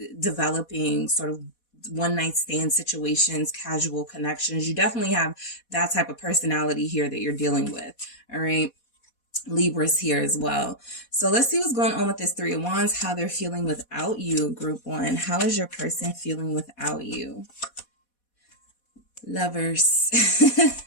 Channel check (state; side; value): late; right; 4.1 ms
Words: developing sort of one night stand situations, casual connections. You definitely have that type of personality here that you're dealing with. All right. Libra's here as well. So let's see what's going on with this 3 of Wands, how they're feeling without you, group 1. How is your person feeling without you? Lovers.